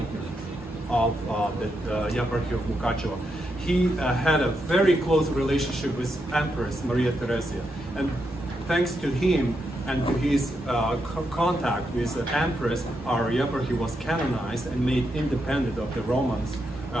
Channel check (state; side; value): normal; both; correlation 0.82